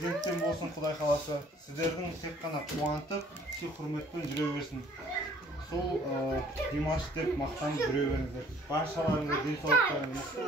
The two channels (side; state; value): both; normal; correlation 0.57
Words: болсын, Құдай қаласа. Сіздердің тек қана қуантып, сый құрметпен жүре берсін. Сол Димаш деп мақтанып жүре беріңіздер. Баршаларыңызға денсаулықтарыңыз мықты